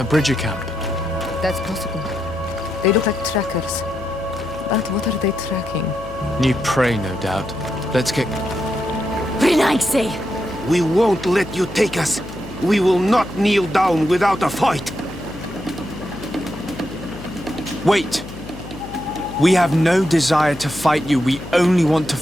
Bridger camp. That's possible. They look like trackers. But what are they tracking? New prey, no doubt. Let's get... Renaigse! We won't let you take us. We will not kneel down without a fight. Wait! We have no desire to fight you. We only want to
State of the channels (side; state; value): left; noise; hum, 14 dB below the sound